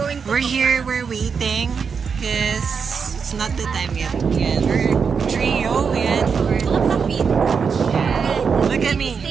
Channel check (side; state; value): left; quieter; 6.0 dB